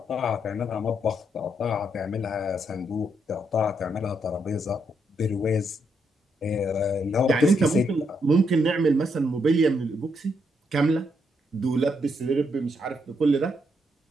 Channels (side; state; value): both; normal; correlation 0.77